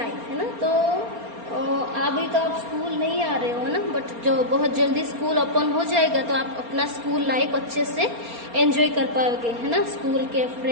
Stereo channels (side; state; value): left; late; 4.3 ms